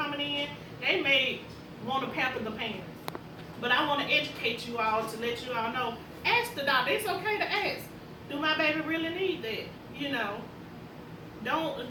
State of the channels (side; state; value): both; identical; correlation 1.00